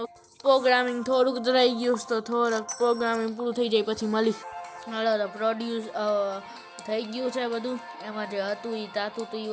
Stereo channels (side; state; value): both; identical; correlation 1.00